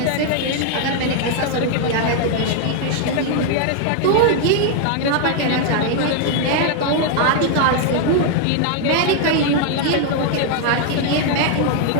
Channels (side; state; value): both; different; correlation 0.00